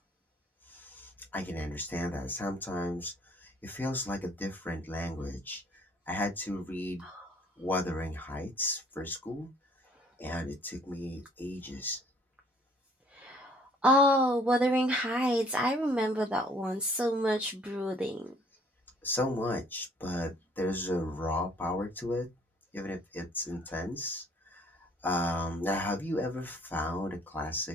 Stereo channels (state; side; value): normal; both; correlation 0.59